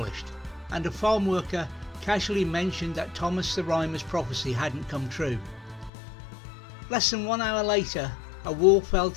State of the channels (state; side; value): drops out; right; at 5.9 s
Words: and a farm worker casually mentioned that Thomas the Rhymer's prophecy hadn't come true. Less than 1 hour later, a wall fell